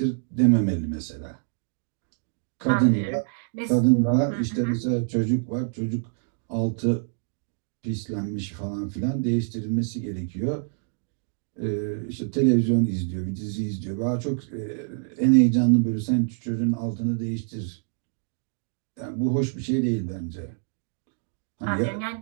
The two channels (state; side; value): silent; left; digital silence